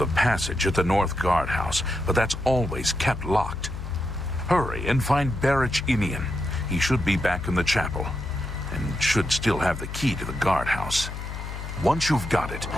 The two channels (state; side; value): noise; left; hum, 8 dB below the sound